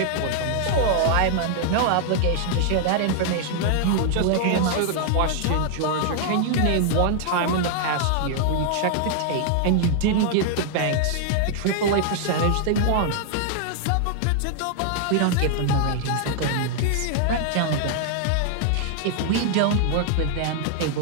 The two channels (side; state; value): both; different; correlation 0.00